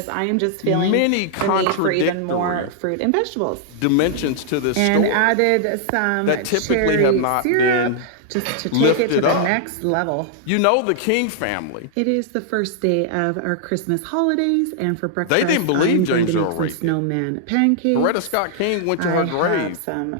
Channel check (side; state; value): both; different; correlation -0.01